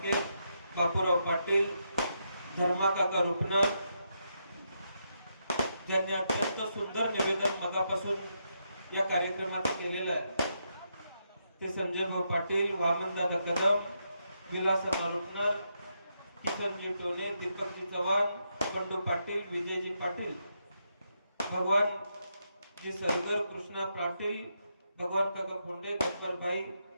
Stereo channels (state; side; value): inverted; both; correlation -0.81